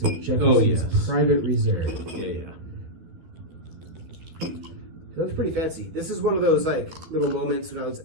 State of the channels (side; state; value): left; late; 13 ms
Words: of Jefferson's Private Reserve? Yeah. It looks pretty fancy. This is one of those like little moments when I was